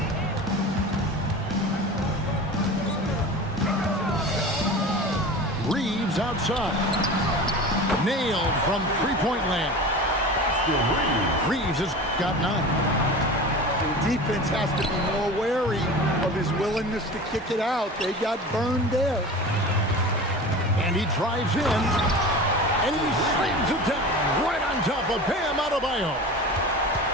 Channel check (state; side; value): normal; both; correlation 0.34